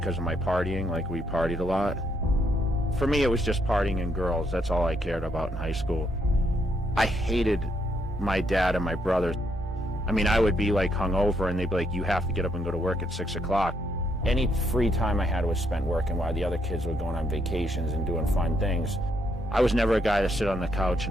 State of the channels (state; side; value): normal; both; correlation 0.75